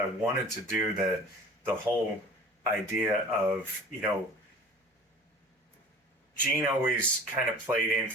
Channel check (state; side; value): normal; both; correlation 0.42